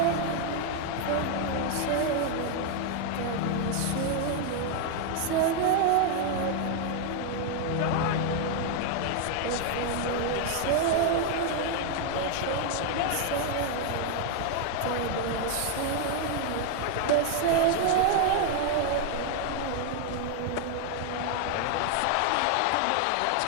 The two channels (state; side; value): different; both; correlation 0.00